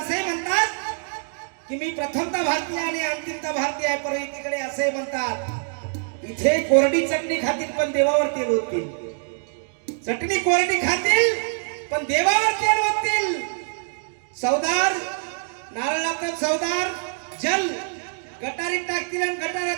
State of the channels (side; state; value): left; silent; digital silence